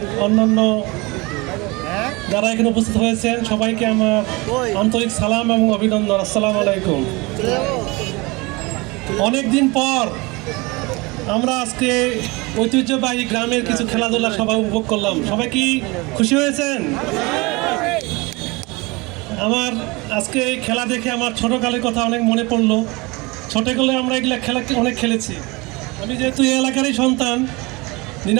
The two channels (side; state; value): left; quieter; 25.0 dB